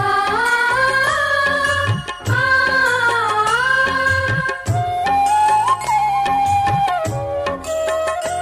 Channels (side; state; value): both; identical; correlation 1.00